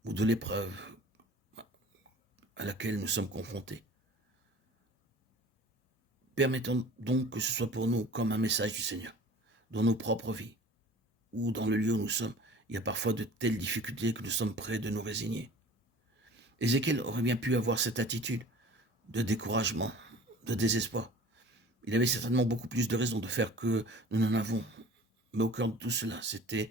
ou de l'épreuve à laquelle nous sommes confrontés. Permettons donc que ce soit pour nous comme un message du Seigneur, dans nos propres vies ou dans le lieu où nous sommes. Il y a parfois de telles difficultés que nous sommes prêts de nous résigner. Ézéchiel aurait bien pu avoir cette attitude de découragement, de désespoir. Il avait certainement beaucoup plus de raisons de faire que nous n'en avons. Mais au cœur de tout cela, c'était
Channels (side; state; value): both; normal; correlation 0.44